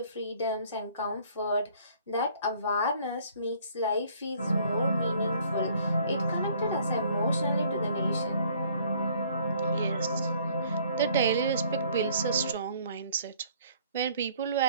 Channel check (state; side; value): inverted; both; correlation -0.58